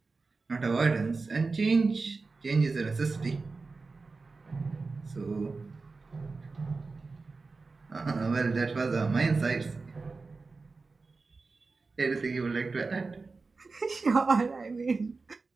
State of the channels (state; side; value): quieter; left; 4.0 dB